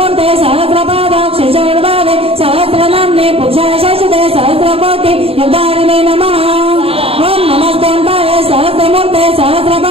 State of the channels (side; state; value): left; late; 0.28 ms